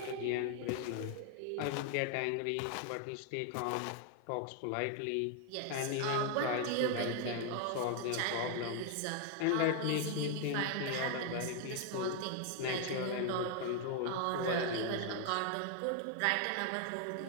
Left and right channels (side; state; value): both; different; correlation 0.00